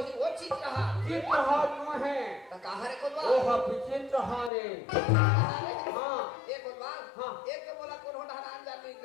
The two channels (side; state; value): right; drops out; at 4.5 s